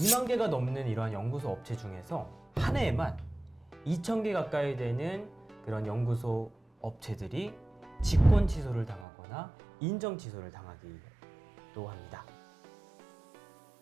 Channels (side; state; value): left; drops out; at 9.1 s